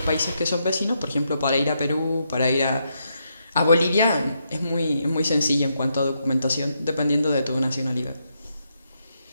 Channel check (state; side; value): inverted; both; correlation -0.80